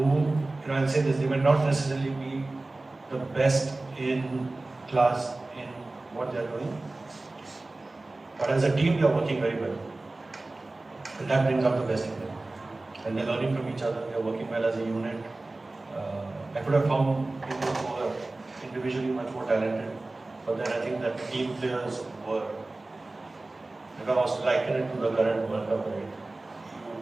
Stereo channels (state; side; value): quieter; left; 3.0 dB